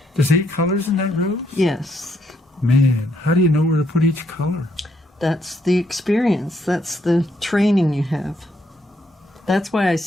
There's 8 colors in that rose? Yes. Man, how do you know where to put each color? That's the experience. That's the training you have. That's why I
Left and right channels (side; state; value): both; normal; correlation 0.73